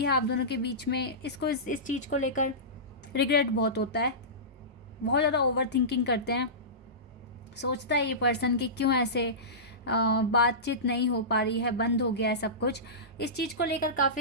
है आप दोनों के बीच में, इसको इस चीज़ को लेकर रिग्रेट बहुत होता है, बहुत ज़्यादा ओवर थिंकिंग करते हैं। सोचता है ये पर्सन कि क्यों ऐसे बातचीत नहीं हो पा रही है, बंद हो गया है सब कुछ। इस चीज़ को लेकर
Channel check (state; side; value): normal; both; correlation -0.20